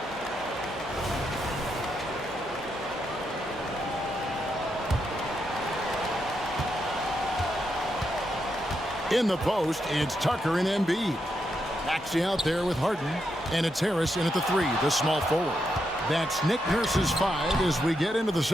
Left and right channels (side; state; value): both; normal; correlation 0.82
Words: In the post, it's Tucker and Embiid. Maxey out there with Harden, and it's Harris in at the 3, the small forward. That's Nick Nurse's 5 as we get into the